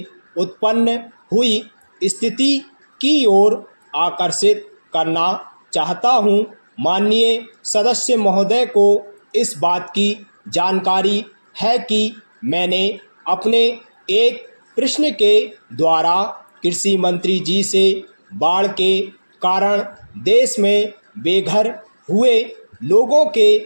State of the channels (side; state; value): both; inverted; correlation -1.00